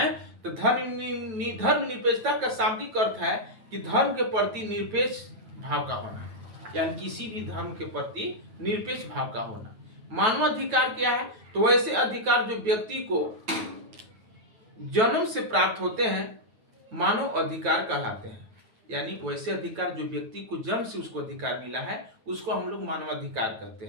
तो धर्मनिरपेक्षता का शाब्दिक अर्थ है कि धर्म के प्रति निरपेक्ष भाव का होना, यानी किसी भी धर्म के प्रति निरपेक्ष भाव का होना। मानवाधिकार क्या है? तो वैसे अधिकार जो व्यक्ति को जन्म से प्राप्त होते हैं मानव अधिकार कहलाते हैं, यानी वैसे अधिकार जो व्यक्ति को जन्म से उसको अधिकार मिला है उसको हम लोग मानवाधिकार कहते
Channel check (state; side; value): late; left; 9.1 ms